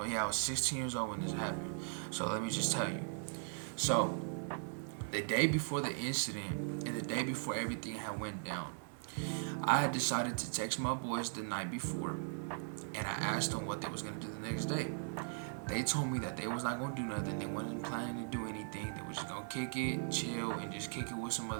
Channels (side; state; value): left; silent; 52 dB below the other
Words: yeah, I was 16 years old when this happened. So let me just tell you. So the day before the incident and the day before everything had went down, I had decided to text my boys the night before, and I asked them what they was gonna do the next day. They told me that they was not gonna do nothing. They wasn't planning to do anything. They was just gonna kick it, chill, and just kick it with some